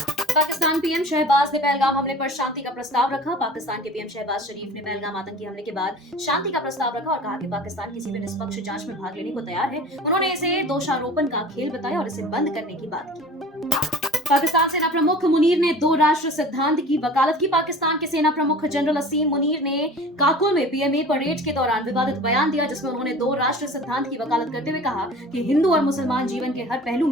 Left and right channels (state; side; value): normal; both; correlation 0.41